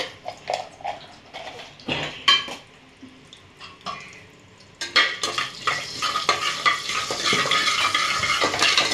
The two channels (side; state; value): both; identical; correlation 1.00